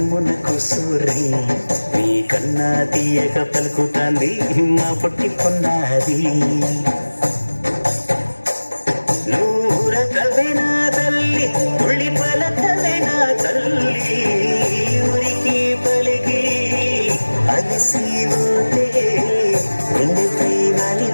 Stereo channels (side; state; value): both; inverted; correlation -1.00